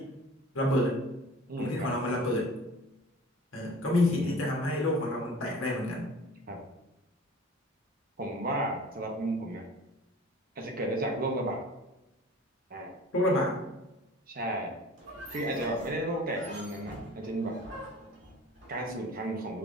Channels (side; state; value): both; normal; correlation 0.44